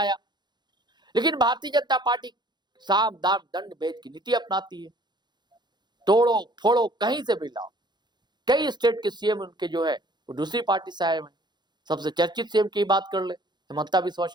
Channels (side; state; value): left; late; 0.21 ms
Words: लेकिन भारतीय जनता पार्टी साम दाम दंड भेद की नीति अपनाती है, तोड़ो फोड़ो कहीं से भी लाओ। कई स्टेट के सीएम उनके जो है वो दूसरी पार्टी से आए हुए। सबसे चर्चित सीएम की बात कर ले, हिमंता बिस्वा